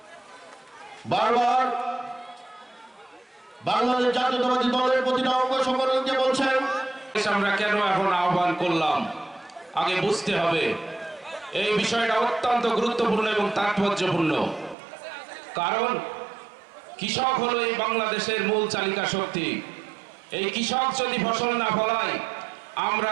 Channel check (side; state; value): left; drops out; at 14.8 s